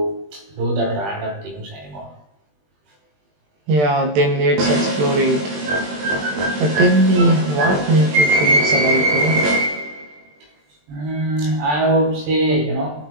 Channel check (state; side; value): late; left; 20 ms